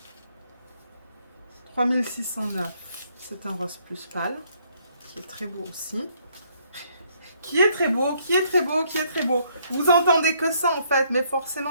3609. C'est un rose plus pâle, qui est très beau aussi. Qui est très beau, qui est très beau, qui est très beau. Vous entendez que ça en fait, mais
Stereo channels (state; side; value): inverted; both; correlation -0.68